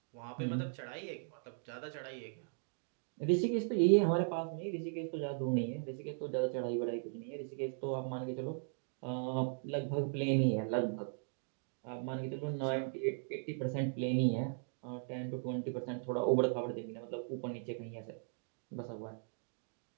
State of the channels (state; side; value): silent; left; digital silence